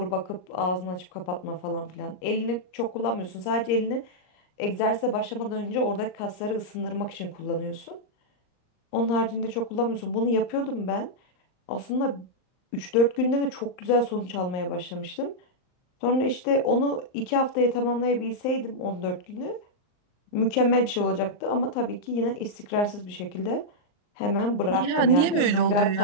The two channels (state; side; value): late; right; 39 ms